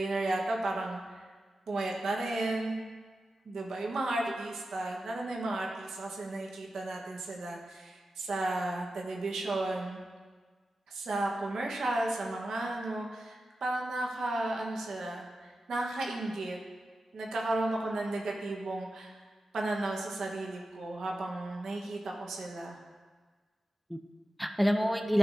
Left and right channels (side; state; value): both; normal; correlation 0.92